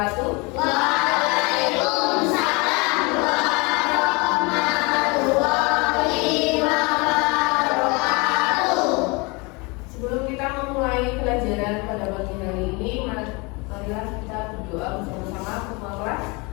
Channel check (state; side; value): quieter; right; 27.8 dB